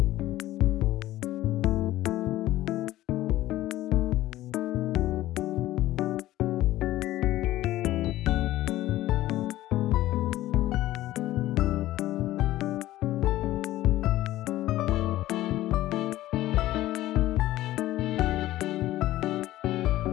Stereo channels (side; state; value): right; quieter; 15.4 dB